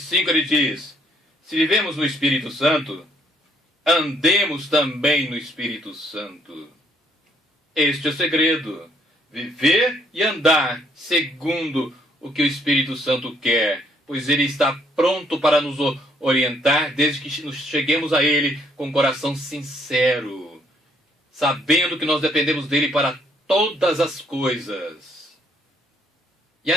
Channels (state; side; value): normal; both; correlation 0.67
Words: ele diz, se vivemos no Espírito Santo, andemos também no Espírito Santo. Este é o segredo. Viver e andar segundo o que o Espírito Santo quer. Pois ele está pronto para nos orientar desde que nos cheguemos a ele com o coração sincero. Sabendo que nós dependemos dele para todas as coisas. E